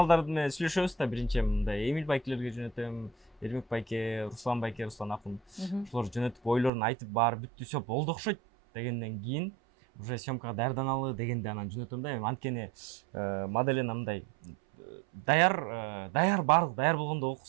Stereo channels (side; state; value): left; drops out; at 6.7 s